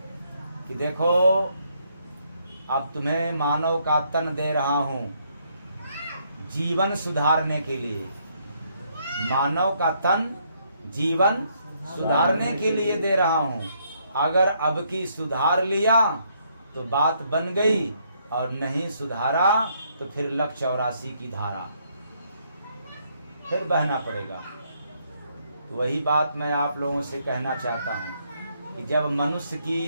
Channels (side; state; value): both; inverted; correlation -0.71